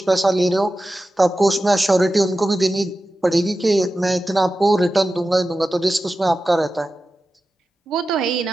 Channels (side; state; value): both; normal; correlation 0.93